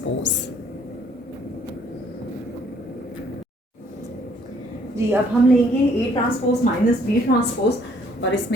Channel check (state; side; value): normal; both; correlation 0.63